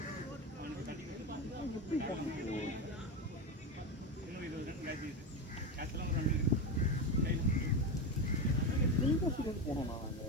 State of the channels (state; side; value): normal; both; correlation 0.16